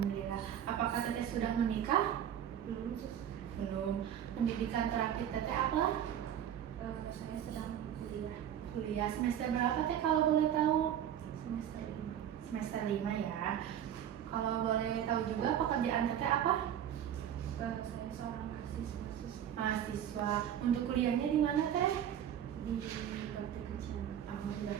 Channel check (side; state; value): left; quieter; 10.0 dB